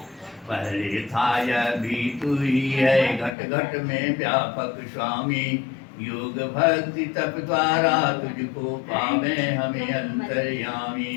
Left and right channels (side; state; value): right; drops out; at 3.4 s